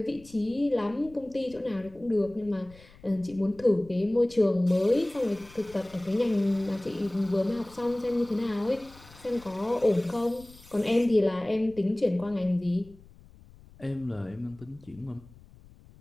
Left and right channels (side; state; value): left; noise; rumble, 23 dB below the sound